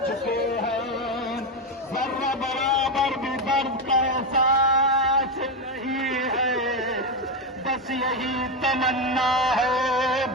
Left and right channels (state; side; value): normal; both; correlation 0.10